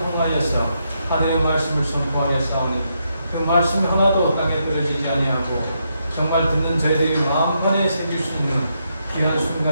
하늘의 말씀을 선포하여 싸우니 그 말씀 하나도 땅에 떨어지지 아니하고 정말 듣는 저희들이 마음판에 새길 수 있는 귀한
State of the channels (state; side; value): inverted; both; correlation -0.80